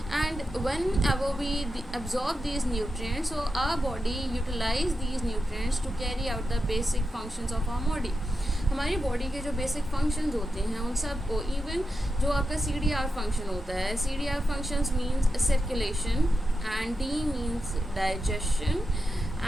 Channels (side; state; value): both; normal; correlation 0.89